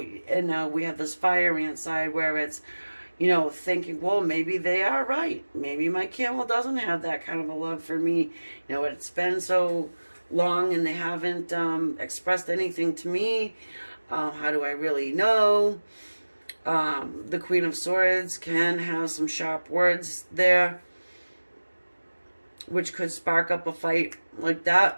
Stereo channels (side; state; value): both; inverted; correlation -1.00